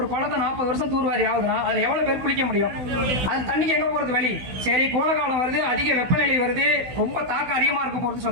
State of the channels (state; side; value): late; left; 16 ms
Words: குளத்தை 40 வருஷம் தூர்வாரி ஆகுதுன்னா அதுல எவ்வளவு பேர் குளிக்க முடியும்? அது தண்ணிக்கு எங்க போறது வழி? சரி, கோடைக்காலம் வருது, அதிக வெப்பநிலை வருது, ரொம்ப தாக்கம் அதிகமா இருக்க போறது